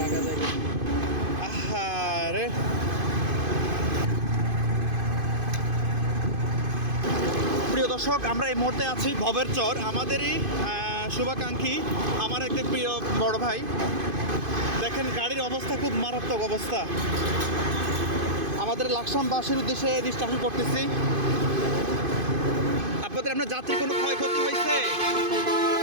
থেকে। আহারে, প্রিয় দর্শক, আমরা এই মুহূর্তে আছি ভবের চর। আমাদেরই শুভাকাঙ্ক্ষী, আমার একটি প্রিয় বড় ভাই। দেখেন গাড়ির অবস্থা খুব মারাত্মক অবস্থা। আমাদের লাকসামবাসীর উদ্দেশ্যে ডিসকাশন করতেছি। আপনাদের আপনার যাত্রী কোনো ক্ষয়ক্ষতি হয়েছে?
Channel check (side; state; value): left; late; 2.5 ms